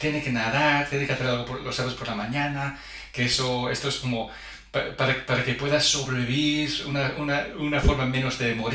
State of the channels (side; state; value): both; identical; correlation 1.00